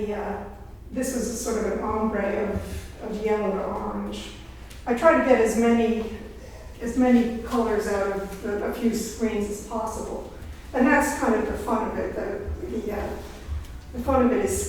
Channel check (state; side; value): identical; both; correlation 1.00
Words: this was a sort of an ombre of yellow to orange. I try to get as many colors out of a few screens as possible. And that's kind of the fun of it. The fun of it